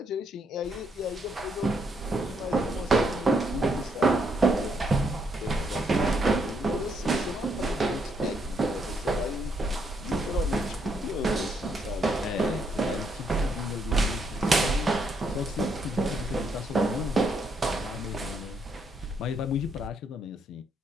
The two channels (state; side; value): normal; both; correlation 0.75